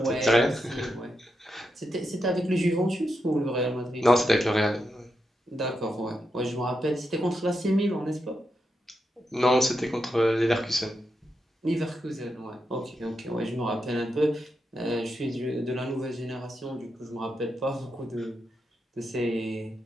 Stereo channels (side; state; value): both; normal; correlation 0.85